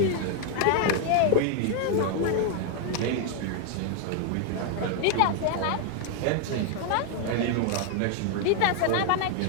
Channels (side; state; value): both; different; correlation 0.00